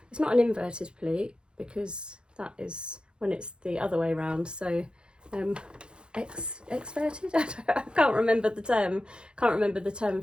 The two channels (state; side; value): late; left; 0.051 ms